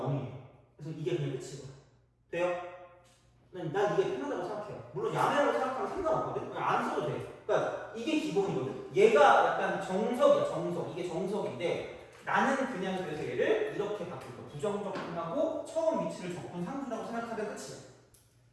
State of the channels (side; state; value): both; identical; correlation 1.00